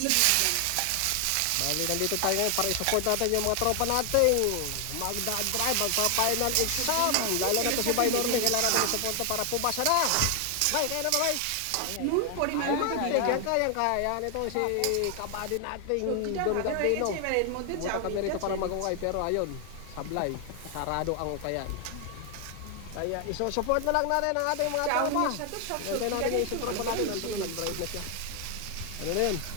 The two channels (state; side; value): different; both; correlation 0.00